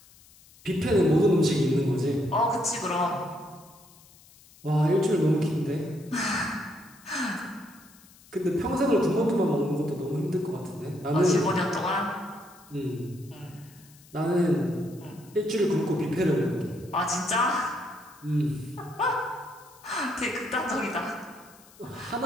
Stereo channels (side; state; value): left; noise; hiss, 25 dB below the sound